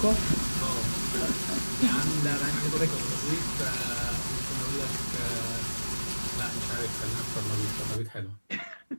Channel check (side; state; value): both; inverted; correlation -1.00